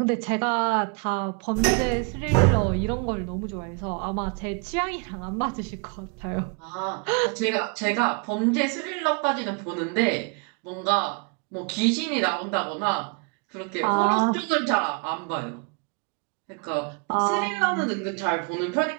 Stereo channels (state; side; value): quieter; left; 34.3 dB